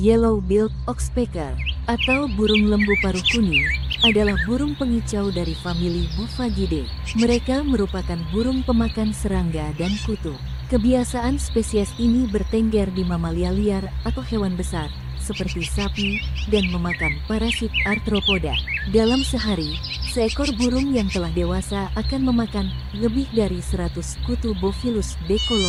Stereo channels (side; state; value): both; identical; correlation 1.00